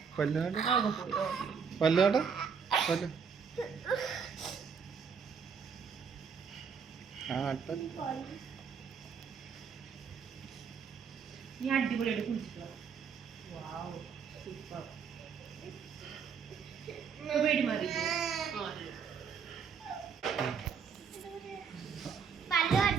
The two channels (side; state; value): left; quieter; 6.3 dB